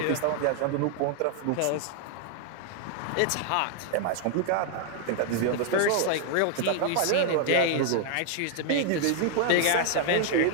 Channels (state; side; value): different; both; correlation 0.00